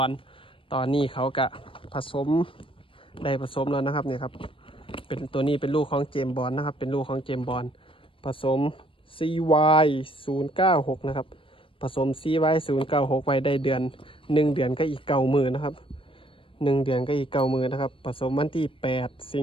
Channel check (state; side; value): late; right; 0.25 ms